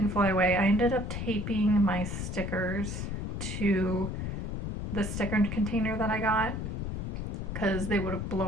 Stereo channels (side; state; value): left; noise; rumble, 3 dB below the sound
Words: fly away. I ended up taping my stickers to the sticker container that I got because they would have